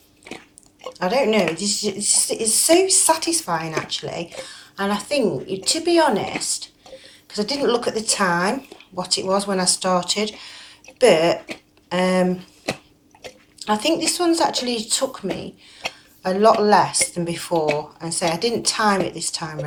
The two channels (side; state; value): both; identical; correlation 1.00